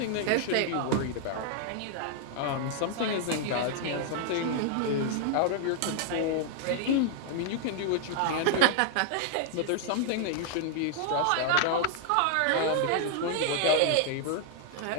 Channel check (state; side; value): different; both; correlation -0.01